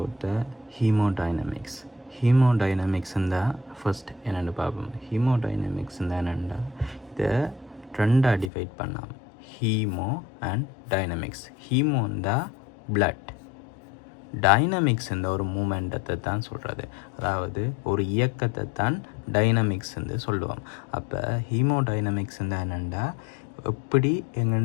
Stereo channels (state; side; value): drops out; right; at 8.5 s